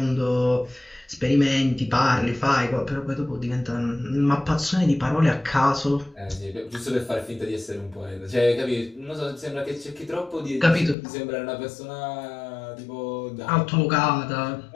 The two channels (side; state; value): right; drops out; at 11.0 s